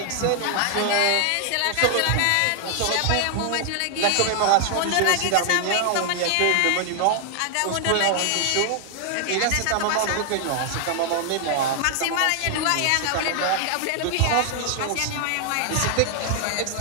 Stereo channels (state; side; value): different; both; correlation 0.00